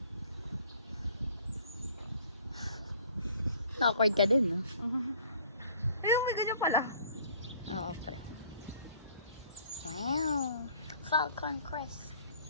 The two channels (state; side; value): inverted; both; correlation -0.55